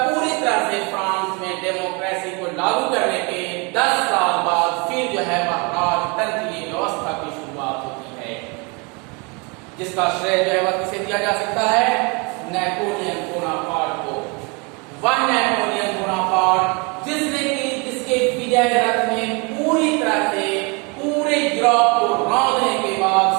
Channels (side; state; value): left; quieter; 30.6 dB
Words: पूरी तरह से फ्रांस में डेमोक्रेसी को लागू करने के 10 साल बाद फिर जो है वह राजतंत्रीय व्यवस्था की शुरुआत होती है, जिसका श्रेय जो है वह किसे दिया जा सकता है? नेपोलियन बोनापार्ट को। वह नेपोलियन बोनापार्ट जिसके विजय रथ में पूरी तरह से पूरे यूरोप को रौंदने के बाद